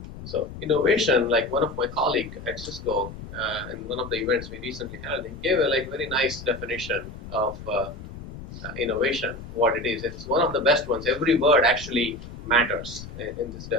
So innovation, like one of my colleagues at Cisco, in one of the events we recently held, he gave a very nice definition of innovation, what it is. It's one of the best ones. Every word actually matters in this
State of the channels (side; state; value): left; noise; rumble, 13 dB below the sound